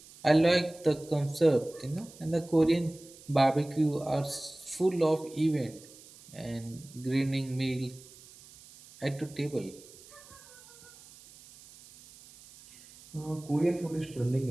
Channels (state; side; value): noise; right; hiss, 21 dB below the sound